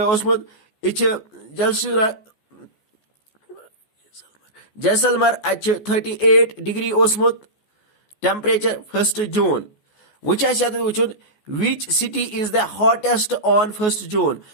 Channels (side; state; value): right; late; 14 ms